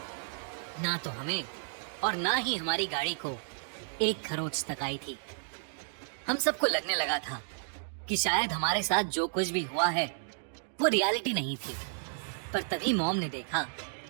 ना तो हमें और ना ही हमारी गाड़ी को एक खरोंच तक आई थी। हम सबको लगने लगा था कि शायद हमारे साथ जो कुछ भी हुआ है वो रियलिटी नहीं थी। पर तभी मॉम ने देखा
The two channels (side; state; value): left; silent; digital silence